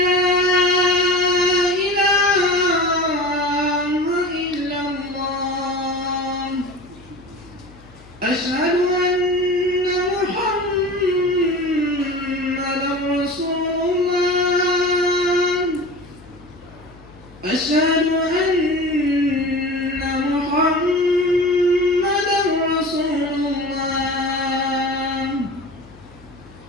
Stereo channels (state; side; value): noise; left; hum, 24 dB below the sound